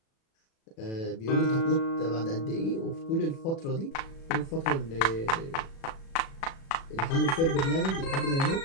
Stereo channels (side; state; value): right; late; 36 ms